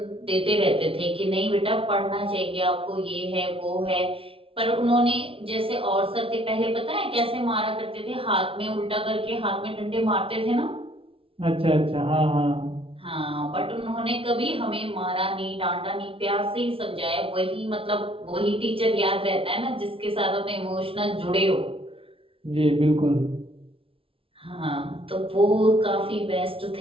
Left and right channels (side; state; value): left; late; 0.26 ms